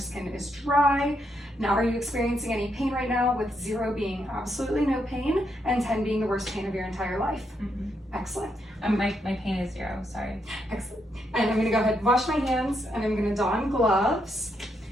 is dry. Now, are you experiencing any pain right now, with 0 being absolutely no pain and 10 being the worst pain of your entire life? Excellent. My pain is 0, sorry. Excellent. And I'm going to go ahead and wash my hands, and I'm going to don gloves.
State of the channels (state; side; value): normal; both; correlation 0.79